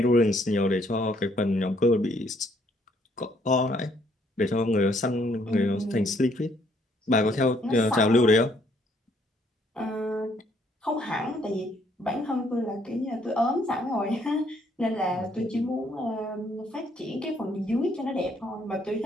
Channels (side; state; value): both; normal; correlation 0.68